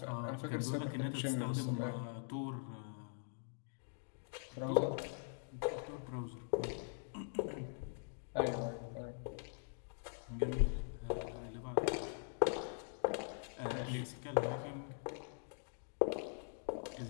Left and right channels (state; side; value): silent; right; digital silence